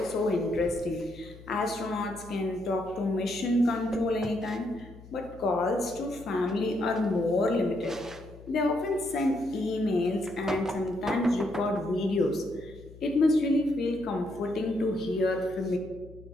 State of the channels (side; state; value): left; noise; hum, 19 dB below the sound